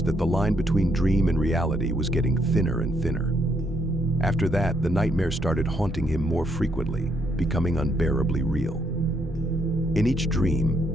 that the line between dream and reality was getting thinner and thinner. After that, the nightmare started haunting him more frequently, becoming unbearably real. In each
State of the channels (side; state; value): both; normal; correlation 0.74